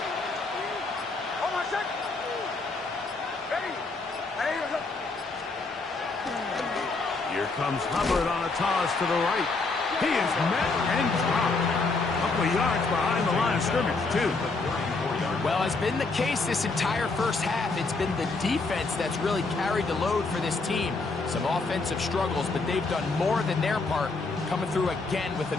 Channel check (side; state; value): right; quieter; 3.8 dB